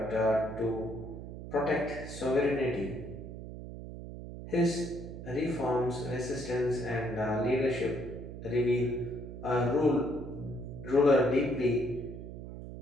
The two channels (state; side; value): noise; right; hum, 10 dB below the sound